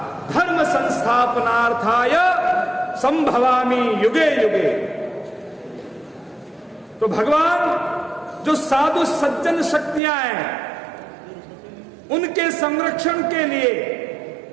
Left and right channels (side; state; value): left; drops out; at 10.0 s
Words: धर्म संस्थापनार्थाय संभवामि युगे युगे। तो भगवान जो साधु सज्जन शक्तियां हैं उनके संरक्षण के लिए,